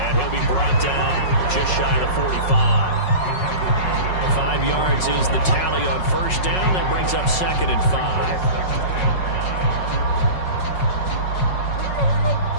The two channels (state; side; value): late; right; 5.4 ms